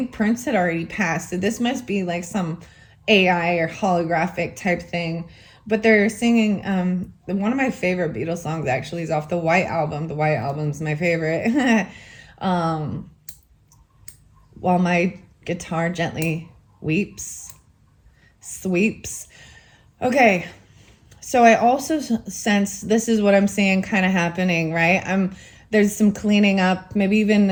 Prince had already passed, so this must be like some AI or holographic type thing. But they're singing one of my favorite Beatles songs actually is off the White Album. The White Album's my favorite. While my guitar gently sweeps. Okay, so I also sense this is what I'm seeing kind of happening, right? There's some cleaning up, maybe even,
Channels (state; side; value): identical; both; correlation 1.00